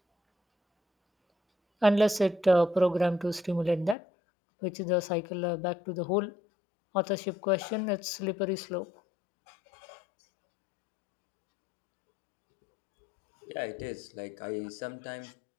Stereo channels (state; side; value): drops out; right; at 4.0 s